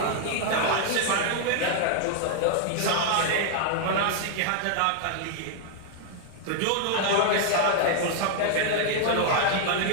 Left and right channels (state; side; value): different; both; correlation 0.00